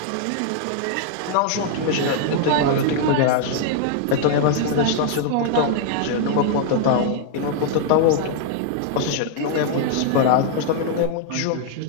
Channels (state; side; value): different; both; correlation 0.00